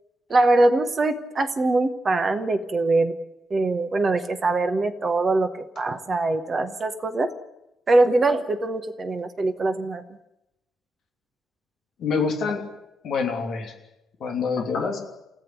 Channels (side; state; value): both; normal; correlation 0.88